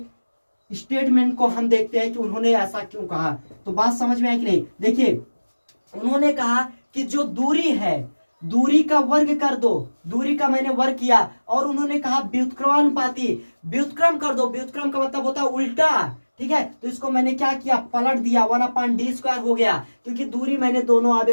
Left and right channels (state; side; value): inverted; both; correlation -1.00